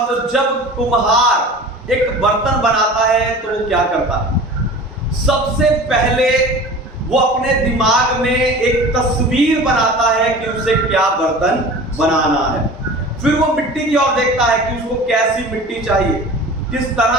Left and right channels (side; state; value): both; normal; correlation 0.39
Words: तो जब कुम्हार एक बर्तन बनाता है तो वो क्या करता है? सबसे पहले वो अपने दिमाग में एक तस्वीर बनाता है कि उसे क्या बर्तन बनाना है। फिर वो मिट्टी की ओर देखता है कि उसको कैसी मिट्टी चाहिए, किस